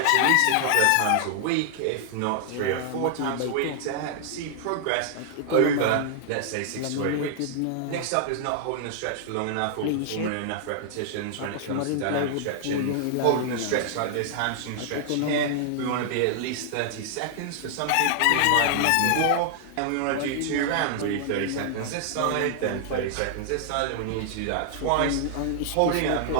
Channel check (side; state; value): both; different; correlation -0.01